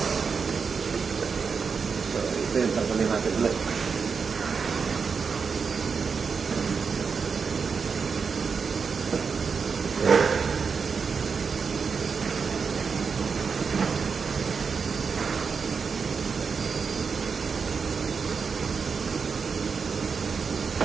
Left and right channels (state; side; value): quieter; left; 5.6 dB